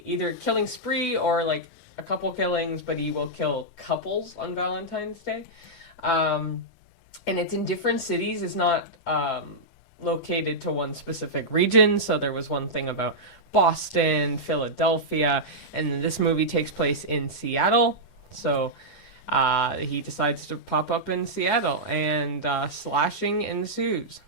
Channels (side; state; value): right; late; 10 ms